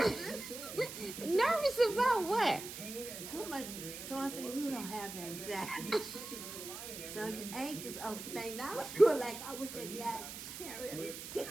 Nervous about what? Too much. So I said, you don't have anxiety. So you anxious over things. I was going like, I wish that guy carried. That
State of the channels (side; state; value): right; noise; hiss, 9 dB below the sound